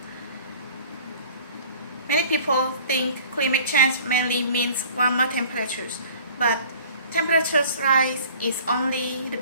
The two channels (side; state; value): both; inverted; correlation -0.48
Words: Many people think climate change mainly means warmer temperatures, but temperatures rise is only the